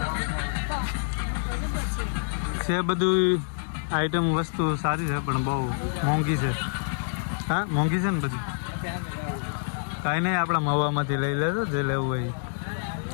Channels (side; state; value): right; silent; digital silence